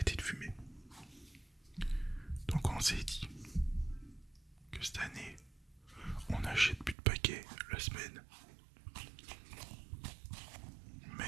de fumer. Donc on s'est dit que cette année, on n'achète plus de paquets la semaine.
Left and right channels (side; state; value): left; drops out; at 7.0 s